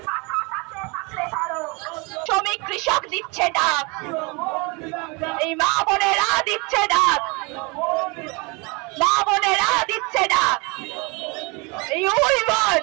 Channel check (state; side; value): quieter; left; 28.8 dB